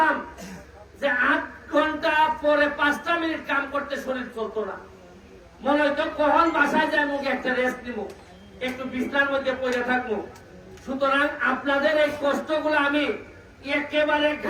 যে 8 ঘন্টা পরে 5টা মিনিট কাম করতে শরীর চলতো না। মনে হইতো কখন বাসায় যায় মুখে একটা রেস্ট নিব, একটু বিছনার মধ্যে পড়ে থাকবো। সুতরাং আপনাদের এই কষ্টগুলো আমি একেবারে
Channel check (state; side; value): identical; both; correlation 1.00